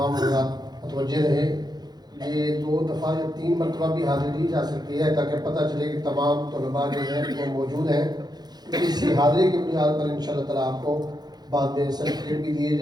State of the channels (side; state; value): left; late; 0.20 ms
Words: حضرات متوجہ رہے، یہ 2 دفعہ یا 3 مرتبہ بھی حاضری دی جا سکتی ہے تاکہ پتہ چلے کہ تمام طلباء جو ہیں وہ موجود ہیں۔ اسی حاضری کی بنیاد پر انشاءاللہ تعالیٰ آپ کو بعد میں سرٹیفکیٹ بھی دیا